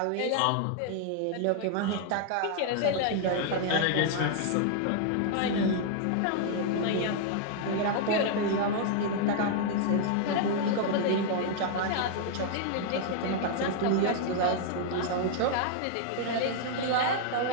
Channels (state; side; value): different; both; correlation 0.00